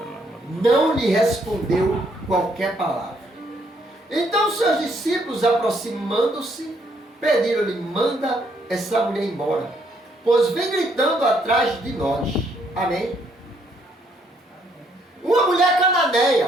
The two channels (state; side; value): normal; both; correlation 0.70